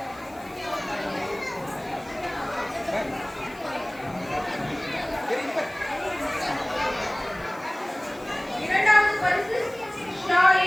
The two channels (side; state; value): left; noise; hiss, 25 dB below the sound